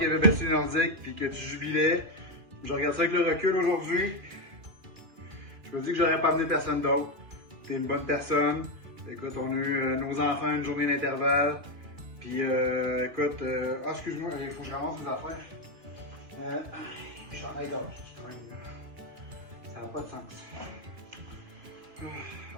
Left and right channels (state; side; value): late; left; 2.4 ms